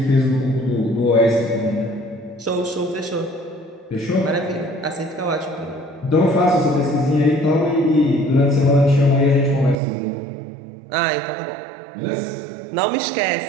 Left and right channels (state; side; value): drops out; left; at 9.8 s